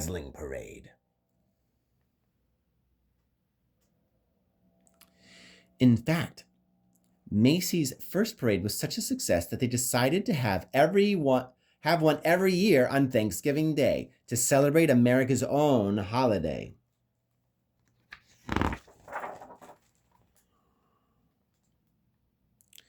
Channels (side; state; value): both; identical; correlation 1.00